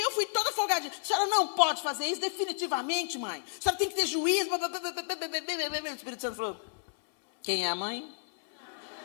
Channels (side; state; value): right; silent; 57 dB below the other